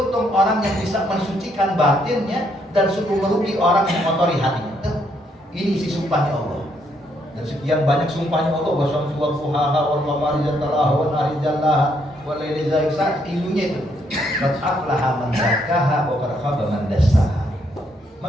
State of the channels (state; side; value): normal; both; correlation 0.73